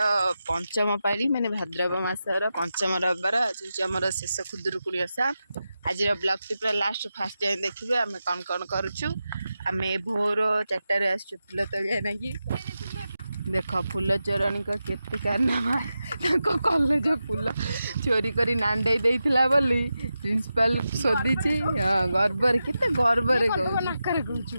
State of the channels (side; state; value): both; inverted; correlation -0.91